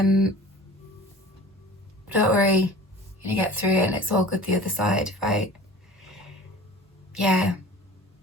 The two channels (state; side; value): normal; both; correlation 0.42